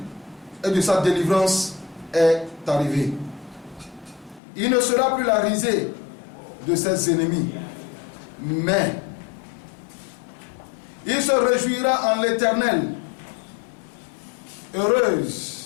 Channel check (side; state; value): right; drops out; at 4.4 s